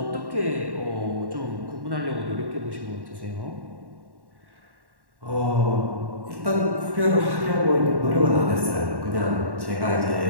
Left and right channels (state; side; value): late; left; 1.1 ms